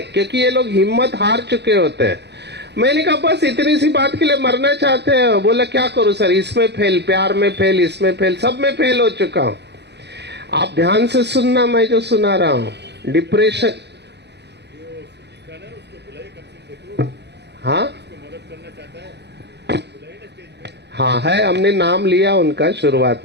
क्योंकि ये लोग हिम्मत हार चुके होते हैं। मैंने कहा बस इतनी सी बात के लिए मरना चाहते हैं? बोला क्या करूं सर, इसमें फेल, प्यार में फेल, इसमें फेल, सब में फेल हो चुका हूं। आप ध्यान से सुनना मैं जो सुना रहा हूं। डिप्रेशन, हाँ हाँ है, हमने नाम लिया उनका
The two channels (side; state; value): left; late; 0.49 ms